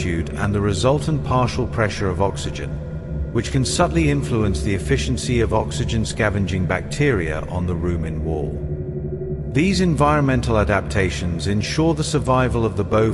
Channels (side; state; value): both; identical; correlation 1.00